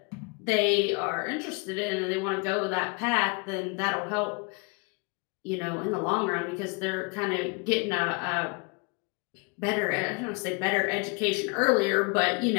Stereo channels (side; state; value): right; quieter; 31.2 dB